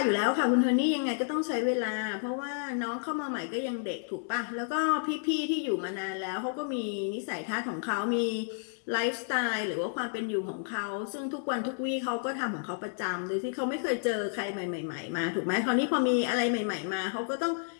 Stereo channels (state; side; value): silent; right; 57 dB below the other